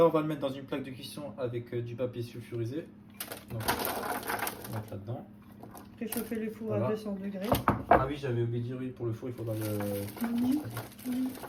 on va le mettre dans une plaque de cuisson avec du papier sulfurisé. Donc, on va mettre là-dedans. Préchauffer le four Voilà. à 200 degrés. Ah oui, j'avais oublié de dire, oui, pour le four, il faudra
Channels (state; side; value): identical; both; correlation 1.00